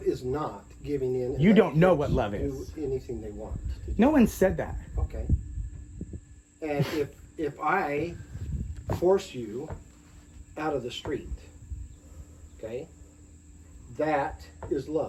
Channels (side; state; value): both; identical; correlation 1.00